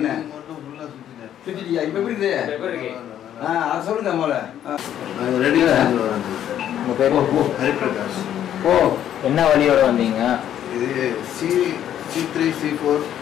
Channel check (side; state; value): right; quieter; 10.6 dB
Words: மட்டும் ஃபுல்லா சுத்திட்டியா? இப்ப எப்படி இருக்கு? அது சொல்லுங்க முதல்ல. உங்க பேர் ஹரிபிரகாஷ். என்ன வழியோட வந்தீங்க? இது C3 C4